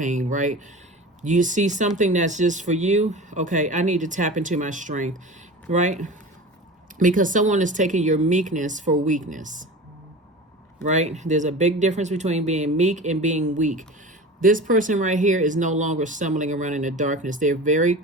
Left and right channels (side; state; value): both; normal; correlation 0.33